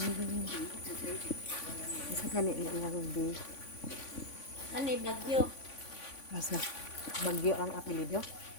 Unsa kay ni iyang bi? Ano Bagyo? Asa? Bagyo ang apelyido?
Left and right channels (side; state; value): right; late; 3.5 ms